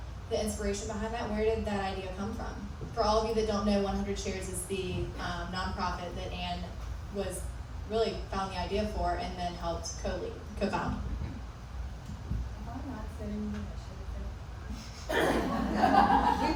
the inspiration behind that. Where did that idea come from? For all of you that don't know, 100 Shares is the nonprofit that Anne was really found the idea for and then helped co-found.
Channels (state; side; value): identical; both; correlation 1.00